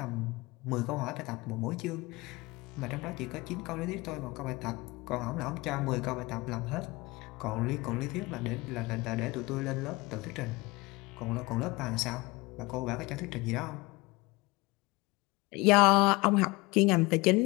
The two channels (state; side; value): quieter; right; 23.4 dB